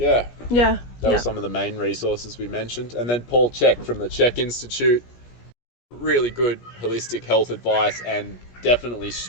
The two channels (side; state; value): right; late; 17 ms